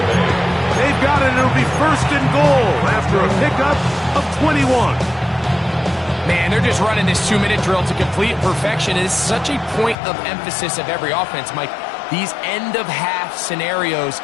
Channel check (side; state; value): right; drops out; at 10.0 s